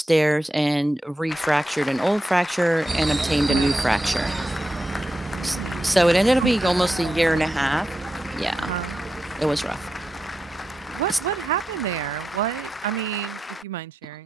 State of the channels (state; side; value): normal; both; correlation 0.88